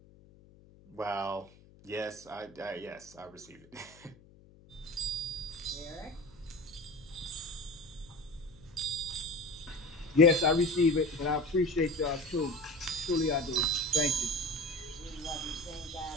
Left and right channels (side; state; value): left; noise; hum, 24 dB below the sound